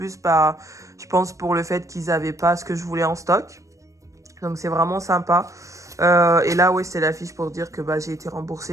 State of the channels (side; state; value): left; late; 0.15 ms